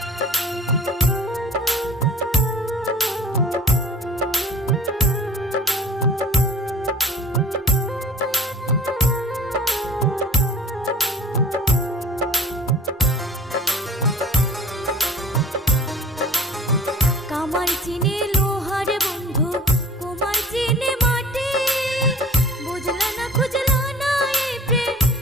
কামার চিনে লোহার বন্ধু, কুমার চিনে মাটি, বুঝলা না খুঁজলা না এই প্রেম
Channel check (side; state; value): both; normal; correlation 0.44